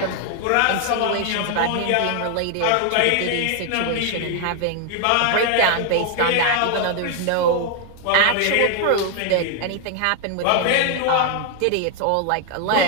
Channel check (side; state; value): both; different; correlation 0.00